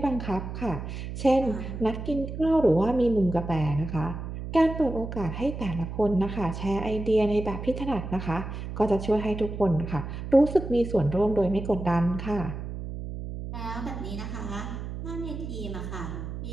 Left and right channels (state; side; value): noise; right; hum, 7 dB below the sound